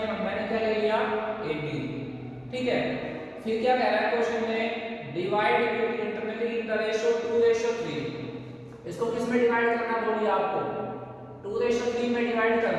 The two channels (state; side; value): identical; both; correlation 1.00